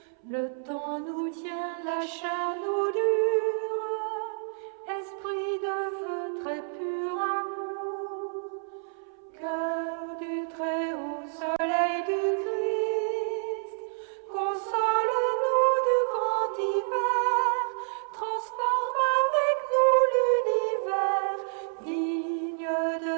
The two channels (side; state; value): left; silent; 59 dB below the other